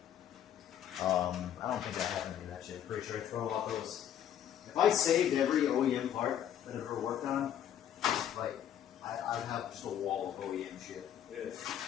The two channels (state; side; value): quieter; right; 10.3 dB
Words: I don't think I have any of that shit. Pretty sure I throw out those. If I saved every OEM part that I've ever worked on, like I'd have just a wall of OEM shit. Yeah.